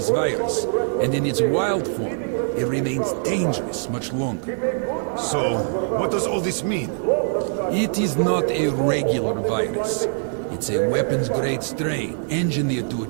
virus, and in its wild form, it remains dangerous much longer. So, what does all this mean? It is not a regular virus. It's a weapons-grade strain, engineered to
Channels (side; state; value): left; silent; digital silence